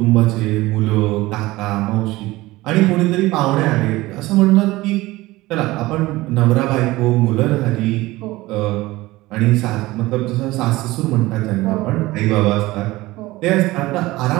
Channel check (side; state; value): left; quieter; 19.1 dB